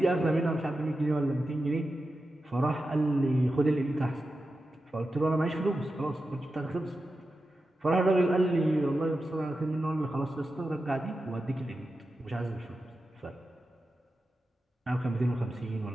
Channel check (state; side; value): normal; both; correlation 0.91